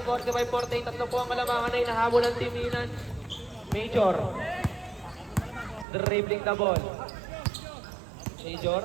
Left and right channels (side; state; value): left; drops out; at 5.9 s